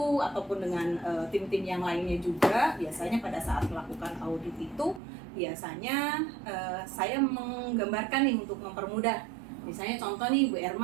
ataupun dengan tim-tim yang lainnya juga, biasanya pada saat melakukan audit itu biasanya saya menggambarkan nih untuk mempermudah. Misalnya contoh nih Bu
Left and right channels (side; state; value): left; drops out; at 5.0 s